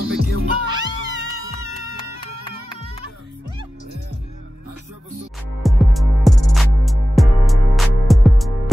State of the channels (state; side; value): normal; both; correlation 0.95